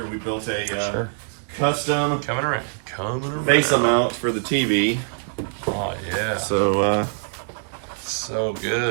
we built a custom Coming around. face mount for the TV. Oh yeah. So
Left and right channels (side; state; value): left; silent; digital silence